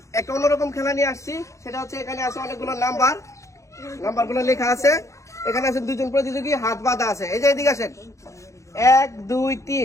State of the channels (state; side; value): late; right; 0.15 ms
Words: একটা অন্যরকম খেলা নিয়ে আসছি। সেটা হচ্ছে এখানে আছে অনেকগুলো নাম্বারগুলো লেখা আছে। এখানে আছে দুজন প্রতিযোগী, হাত বাঁধা আছে। এই যে এদিকে আসেন, 1 2